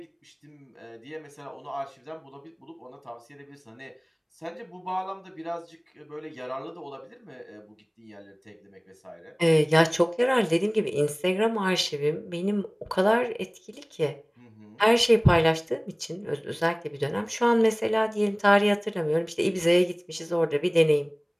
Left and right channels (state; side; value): identical; both; correlation 1.00